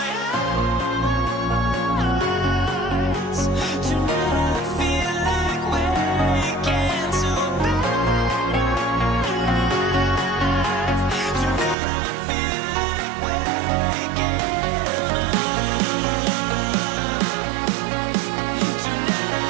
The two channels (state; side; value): drops out; left; at 11.8 s